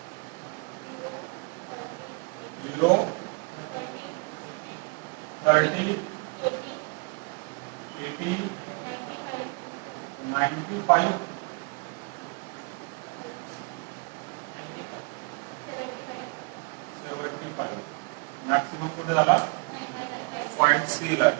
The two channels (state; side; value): quieter; left; 31.3 dB